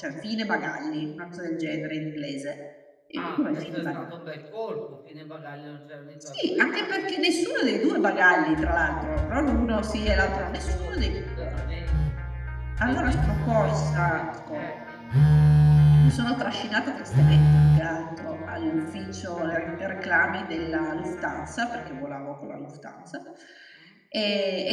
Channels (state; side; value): identical; both; correlation 1.00